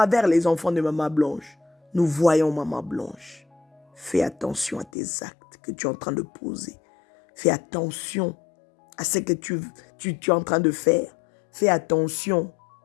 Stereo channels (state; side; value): drops out; right; at 4.9 s